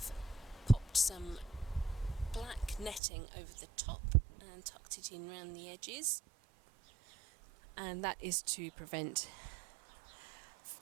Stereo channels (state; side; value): drops out; left; at 3.0 s